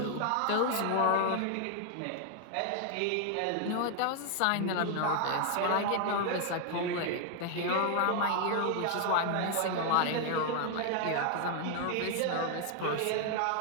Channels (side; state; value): both; different; correlation 0.00